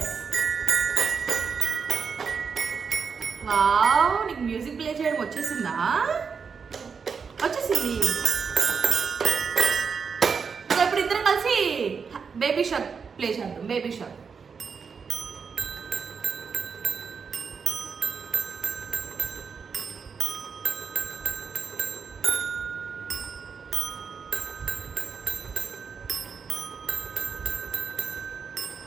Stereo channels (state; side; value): quieter; left; 5.9 dB